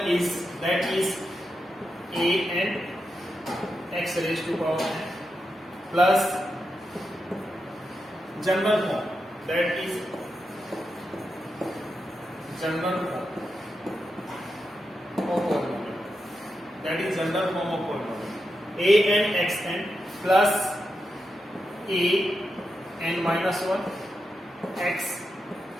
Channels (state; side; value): normal; both; correlation 0.87